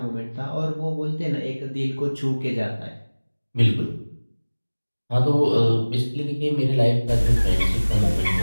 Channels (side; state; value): both; inverted; correlation -1.00